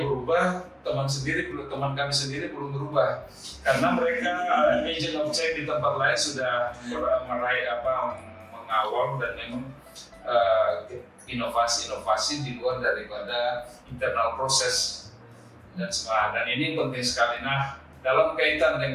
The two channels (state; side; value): identical; both; correlation 1.00